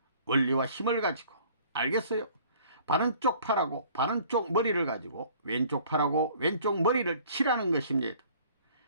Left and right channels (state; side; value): inverted; both; correlation -0.53